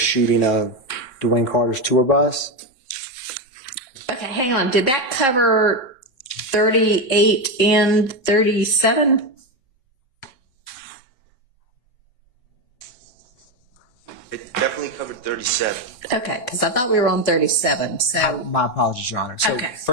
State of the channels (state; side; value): late; right; 3.7 ms